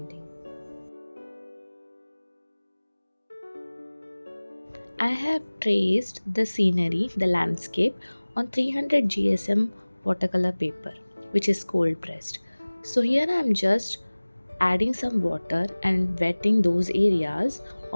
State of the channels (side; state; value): both; inverted; correlation -1.00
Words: I have traced the scenery, the landscape on 300 GSM watercolor paper which is cold pressed. So here I'm just adding some water and wetting those areas